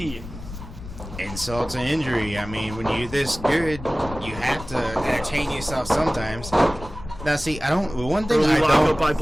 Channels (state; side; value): noise; left; rumble, 13 dB below the sound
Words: Insult to injury. I mean, when you're this good, you have to entertain yourself sometimes. Now, see, one thing Early lockup by